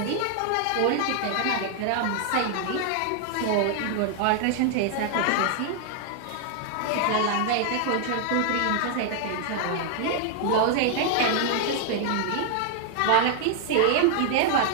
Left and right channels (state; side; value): different; both; correlation 0.00